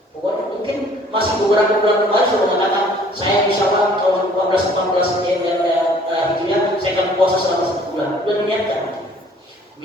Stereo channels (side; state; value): both; normal; correlation 0.56